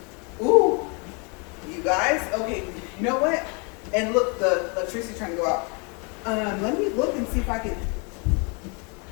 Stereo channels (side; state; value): right; quieter; 33.6 dB